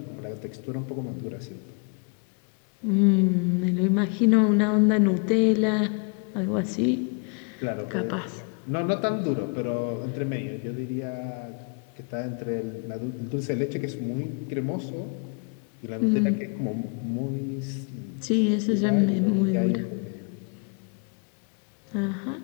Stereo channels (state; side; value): quieter; right; 38.6 dB